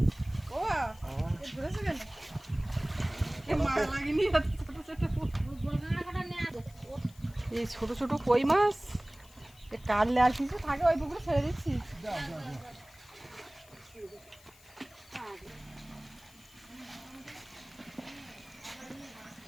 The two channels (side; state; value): left; noise; hiss, 24 dB below the sound